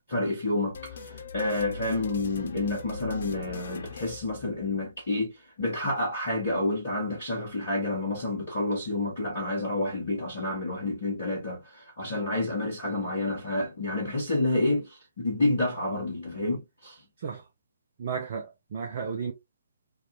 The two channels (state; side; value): inverted; both; correlation -0.67